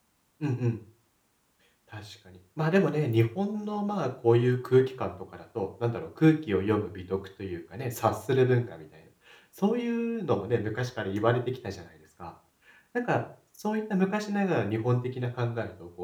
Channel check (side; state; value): both; identical; correlation 1.00